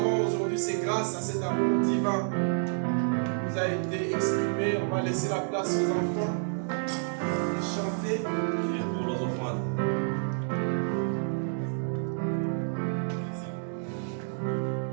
aujourd'hui, c'est grâce à cet amour divin qui nous a été exprimé. On va laisser la place aux enfants et chanter. Et pour les enfants.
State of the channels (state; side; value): silent; left; digital silence